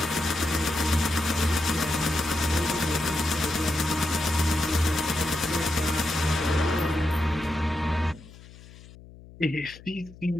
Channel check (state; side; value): noise; left; hum, 20 dB below the sound